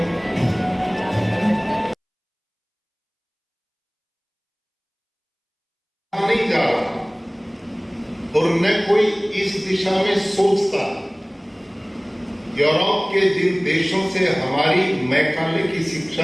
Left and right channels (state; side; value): identical; both; correlation 1.00